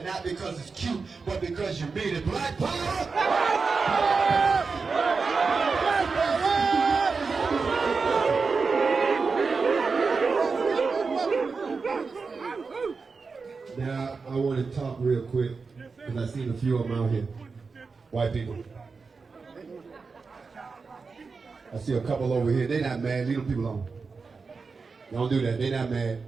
not because it's cute, but because you mean it. Black power! Now, I want to talk real quick, because I've seen a few of them out here. White people. I see a couple over here. They're not mad. Leave them people alone. Don't do that. They're not mad.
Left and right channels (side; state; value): left; quieter; 4.7 dB